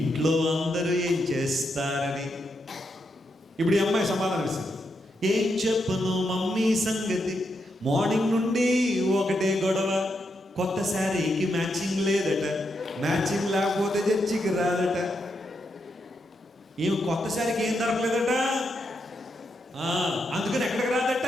అందరూ ఏం చేస్తారని. ఇప్పుడు ఈ అమ్మాయి సమాధానం ఇస్తుంది, ఏం చెప్పను మమ్మీ సంగతి, మార్నింగ్ నుండి ఒకటే గొడవ, కొత్త శారీకి మ్యాచింగ్ లేదట, మ్యాచింగ్ లేకపోతే చర్చికి రాదట. ఏమి కొత్త శారీకి ఏం దొరకలేదట, అందుకని ఎక్కడికి రాదట.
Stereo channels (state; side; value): normal; both; correlation 0.82